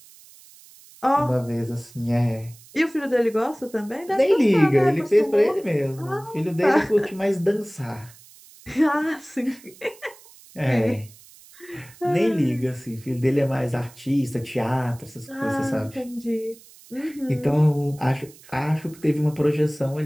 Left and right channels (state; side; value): noise; right; hiss, 23 dB below the sound